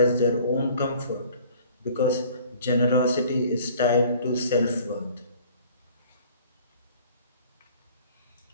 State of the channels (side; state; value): both; inverted; correlation -0.52